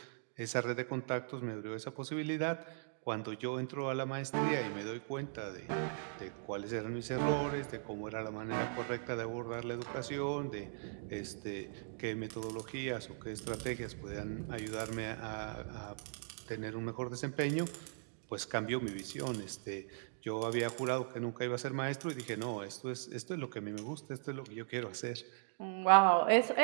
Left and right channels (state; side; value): silent; left; digital silence